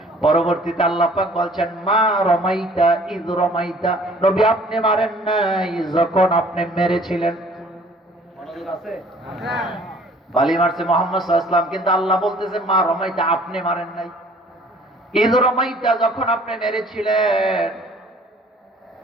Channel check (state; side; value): normal; both; correlation 0.54